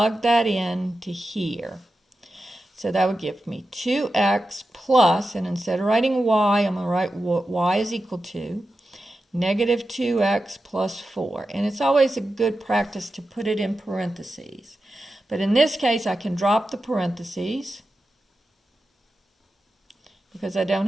that in to here. So that would give me 2x plus, and instead of writing y, I'm going to write what y is equal to negative 2x plus 4. And it's always a good practice to put it in parentheses. But in this case, I can drop the parentheses because I don't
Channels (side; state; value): both; normal; correlation 0.91